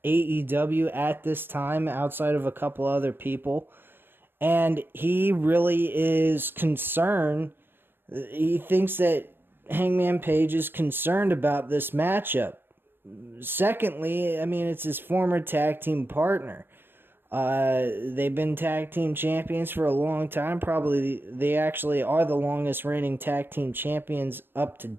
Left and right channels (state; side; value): late; left; 0.10 ms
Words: AEW at this time, outside of a couple other people. And he really is concerned. He thinks that Hangman Page is concerned about this matchup. Secondly, I mean, it's his former tag team partner. They've been tag team champions for a long time. Probably they actually are the longest reigning tag team champions up to